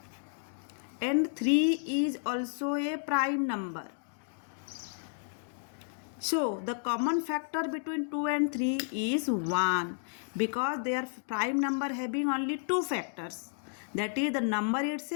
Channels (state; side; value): silent; right; digital silence